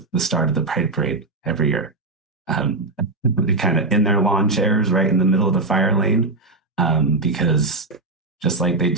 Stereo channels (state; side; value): quieter; left; 3.3 dB